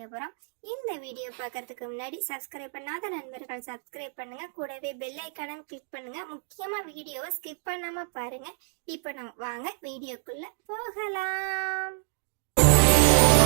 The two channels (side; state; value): left; silent; 59 dB below the other